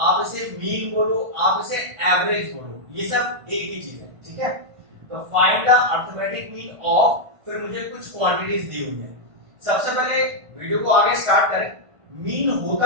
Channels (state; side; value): late; left; 1.5 ms